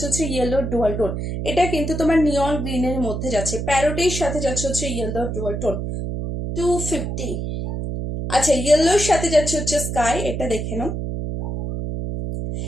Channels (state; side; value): noise; right; hum, 4 dB below the sound